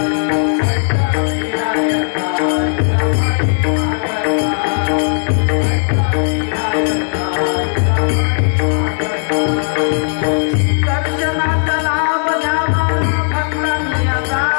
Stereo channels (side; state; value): right; silent; digital silence